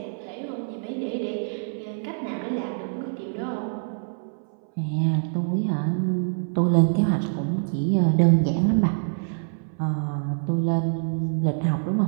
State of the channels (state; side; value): silent; left; 60 dB below the other